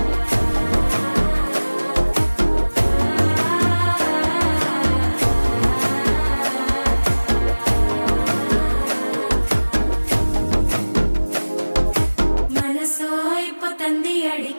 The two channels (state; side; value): inverted; both; correlation -1.00